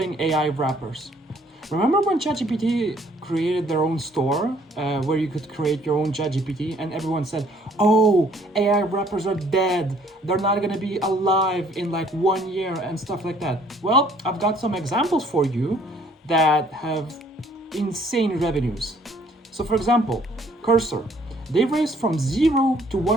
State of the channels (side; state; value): both; normal; correlation 0.61